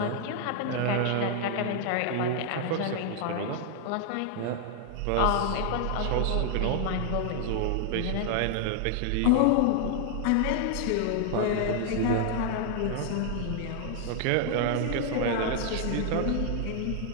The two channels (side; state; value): both; different; correlation 0.00